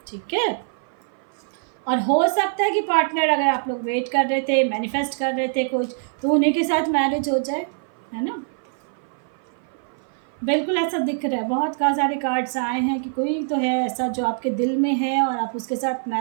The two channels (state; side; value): silent; left; 57 dB below the other